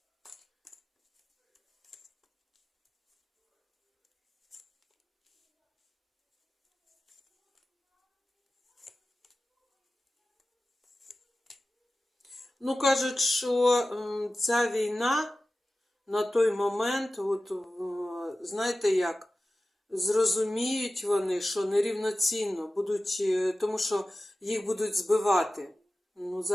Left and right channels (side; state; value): both; normal; correlation 0.95